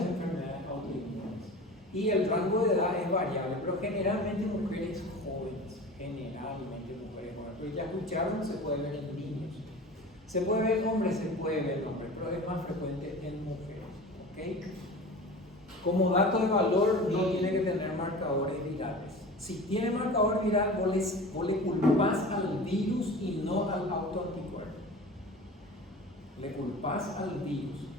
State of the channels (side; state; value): both; normal; correlation 0.36